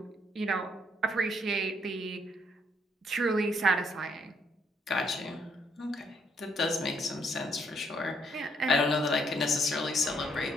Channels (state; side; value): normal; both; correlation 0.70